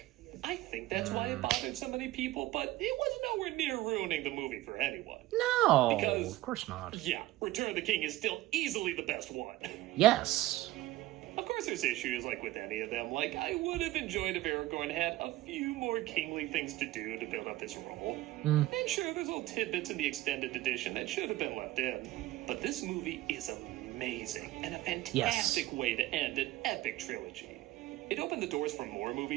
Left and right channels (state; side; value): quieter; left; 17.0 dB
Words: I think that's why it bothered so many people, but it was nowhere near ruining the movie for anyone. No, Because- of course not. Yeah, Return of the King is still easily the best one. Yes. Of course there's issues like with any of them. Like, I would have enjoyed if Aragorn had a few more kingly things to do to build up his role. And sure, there's little tidbits in the extended edition that should have been left in. But this movie is amazing and a fantastic way to end an epic trilogy. It opened the doors for more